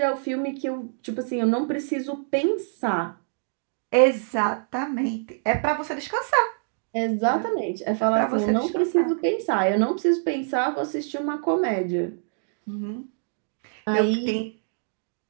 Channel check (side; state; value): left; silent; digital silence